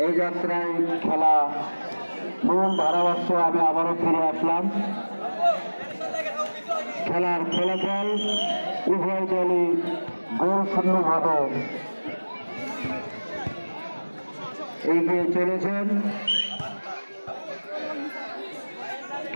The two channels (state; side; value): inverted; both; correlation -1.00